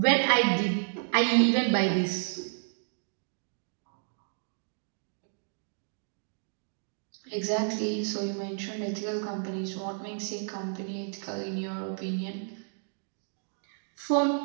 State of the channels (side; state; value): left; silent; digital silence